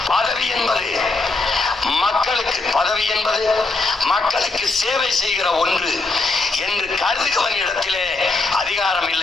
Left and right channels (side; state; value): right; quieter; 3.4 dB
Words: பதவி என்பது மக்களுக்கு, பதவி என்பது மக்களுக்கு சேவை செய்கிற ஒன்று என்று கருதுகிறவனிடத்திலே அதிகாரம்